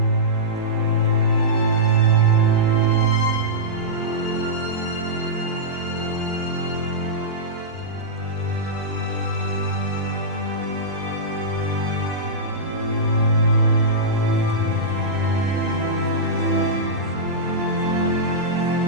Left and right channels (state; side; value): normal; both; correlation -0.13